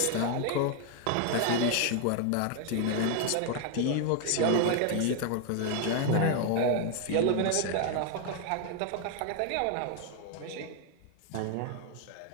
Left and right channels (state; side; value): different; both; correlation 0.00